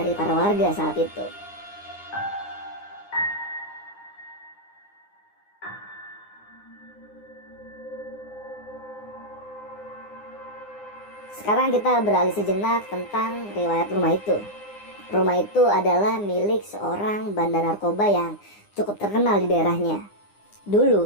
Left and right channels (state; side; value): late; right; 9.8 ms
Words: para warga saat itu. Sekarang kita beralih sejenak tentang riwayat rumah itu. Rumah itu adalah milik seorang bandar narkoba yang cukup terkenal di daerahnya.